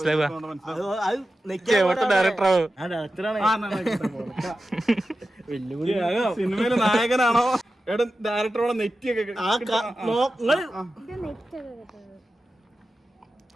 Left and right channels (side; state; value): both; normal; correlation 0.93